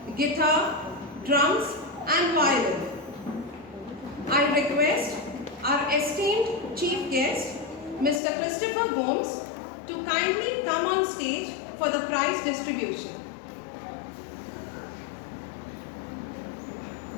guitar, drums, and violin. I request our esteemed chief guest, Mr. Christopher Gomes, to kindly come on stage for the prize distribution.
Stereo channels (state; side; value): drops out; right; at 8.2 s